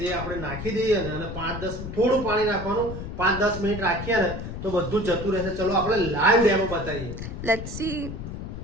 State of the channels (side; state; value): left; noise; rumble, 8 dB below the sound